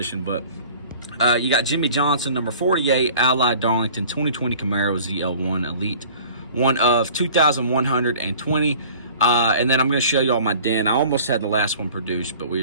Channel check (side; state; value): both; inverted; correlation -0.46